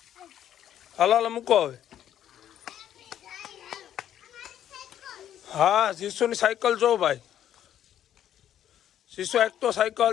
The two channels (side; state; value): right; quieter; 10.7 dB